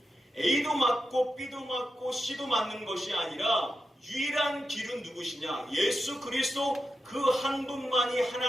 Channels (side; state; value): both; normal; correlation 0.89